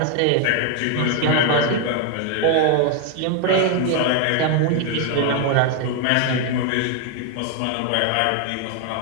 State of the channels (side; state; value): both; different; correlation 0.01